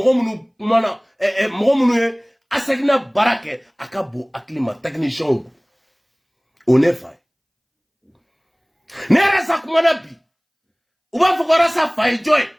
minnu ye Asegina baara kɛ a ka bon hakili ma techniciens o ne fa ye ne yɛrɛ sa kumana bi u b'a fɔ ko Arasa fa ye jɔn ye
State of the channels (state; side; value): identical; both; correlation 1.00